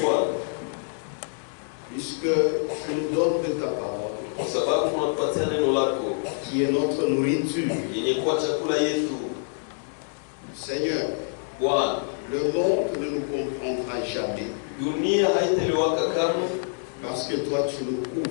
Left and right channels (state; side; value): silent; right; digital silence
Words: Bwana, puisque tu nous donnes de ta parole, kwa sababu unatupatia neno lako qui est notre nourriture. yenye kuwa chakula yetu. Seigneur, Bwana, le monde ne nous comprendra jamais, dunia haitaelewaka kamwe, parce que toi tu nous